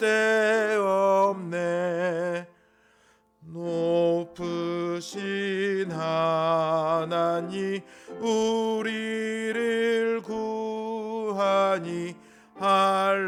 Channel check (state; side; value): identical; both; correlation 1.00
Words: 높으신 하나님 우리를 구하니